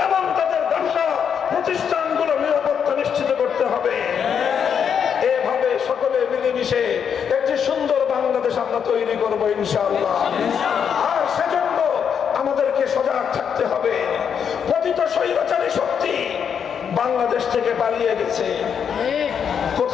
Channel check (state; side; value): quieter; right; 7.5 dB